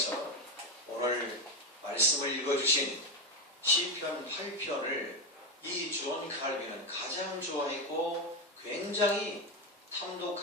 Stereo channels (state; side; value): normal; both; correlation 0.11